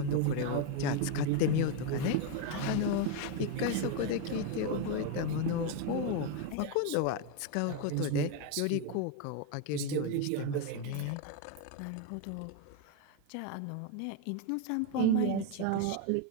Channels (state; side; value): different; both; correlation 0.02